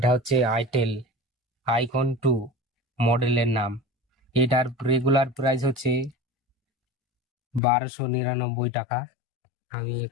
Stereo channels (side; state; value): right; drops out; at 7.6 s